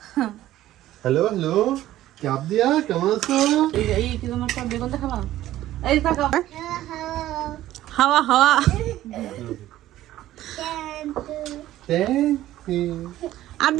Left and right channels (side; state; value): left; quieter; 14.1 dB